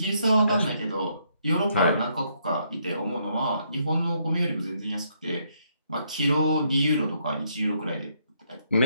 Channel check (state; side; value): inverted; both; correlation -0.73